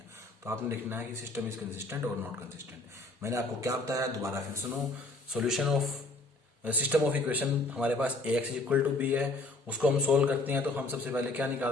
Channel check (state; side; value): quieter; right; 3.0 dB